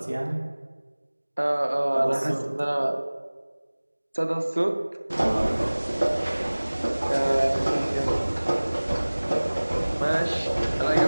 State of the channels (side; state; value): both; inverted; correlation -1.00